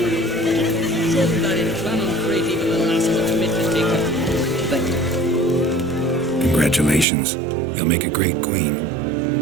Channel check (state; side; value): drops out; left; at 7.1 s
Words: Congratulations. You'll make a great queen.